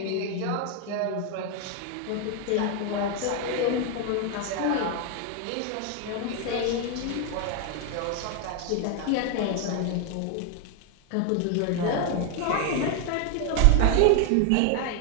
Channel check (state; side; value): different; both; correlation 0.01